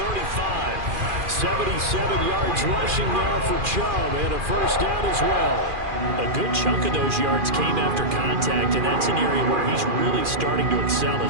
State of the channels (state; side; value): late; left; 2.4 ms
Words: 77 yards rushing now for Chubb, and a first down as well. A good chunk of those yards came after contact, and that's an area where he's really starting to excel